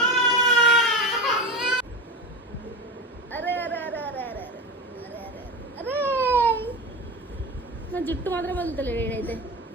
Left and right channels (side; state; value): both; normal; correlation 0.24